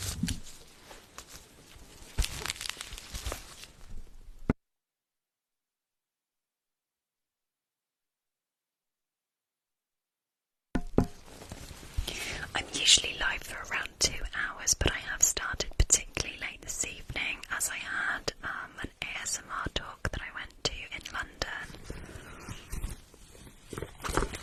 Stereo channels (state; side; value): identical; both; correlation 1.00